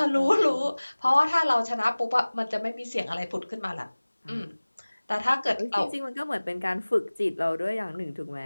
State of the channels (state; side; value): inverted; both; correlation -1.00